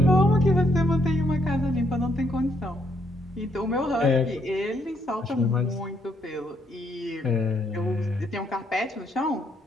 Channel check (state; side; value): normal; both; correlation 0.72